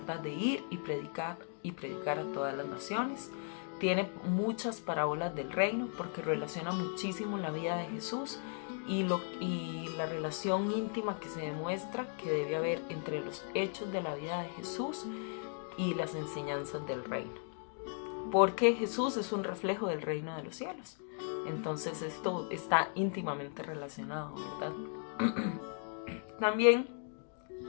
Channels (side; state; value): right; silent; 53 dB below the other